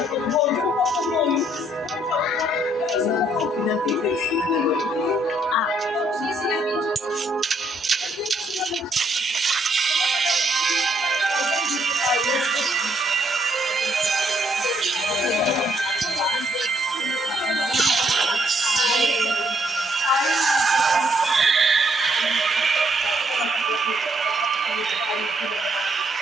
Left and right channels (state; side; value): normal; both; correlation 0.71